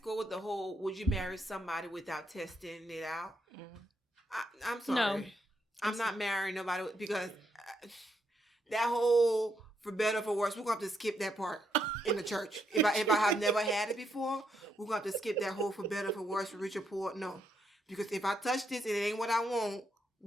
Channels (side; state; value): both; normal; correlation 0.78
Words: with the whole, would you marry somebody without testing it out? Mm-hmm. I'm sorry. No. I'm not marrying nobody because that whole, for better or for worse, we're going to have to skip that part. In the church. If I have never had it before, we're going to have to skip that whole for better, for worse, for rich or poor. No. Because if I touch this and it ain't what I want,